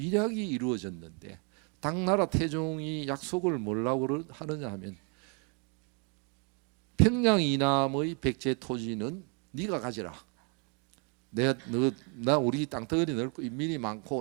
이루어졌는데 당나라 태종이 약속을 뭐라고 하느냐 하면 평양 이남의 백제 토지는 네가 가지라. 나 우리 땅덩어리 넓고 인민이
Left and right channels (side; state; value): left; quieter; 36.3 dB